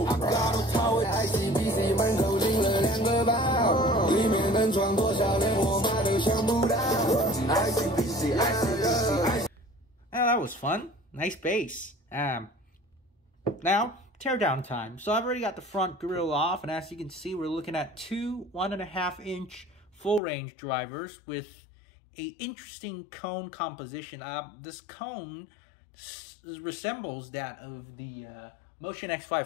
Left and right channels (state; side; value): drops out; right; at 20.2 s